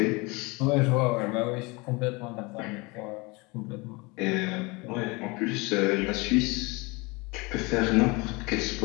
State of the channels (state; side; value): quieter; right; 26.2 dB